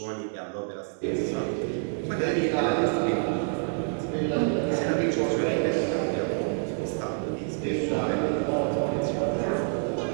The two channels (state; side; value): silent; left; 60 dB below the other